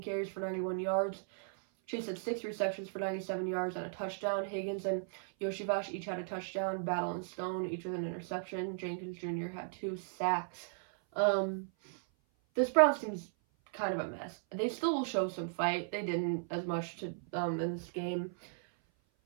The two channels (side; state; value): left; silent; 54 dB below the other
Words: carries for 91 yards. Chase had 6 receptions for 97 yards and a touchdown. Higgins and Yoshivash each had a touchdown. Battle and Stone each with an interception. Jenkins Jr. had 2 sacks. This Browns team's kind of a mess. They still will show some fight. They didn't as much in this game.